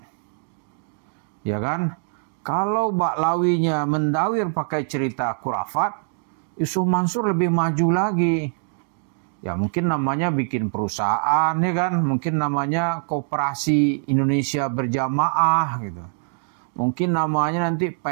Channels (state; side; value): silent; left; 63 dB below the other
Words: Ya kan? Kalau Baklawinya mendawir pakai cerita kurafat, Yusuf Mansur lebih maju lagi. Ya mungkin namanya bikin perusahaan, ya kan? Mungkin namanya Koperasi Indonesia Berjamaah gitu. Mungkin namanya nanti